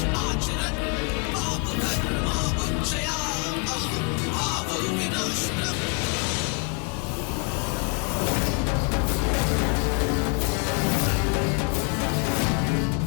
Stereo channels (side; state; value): right; quieter; 34.9 dB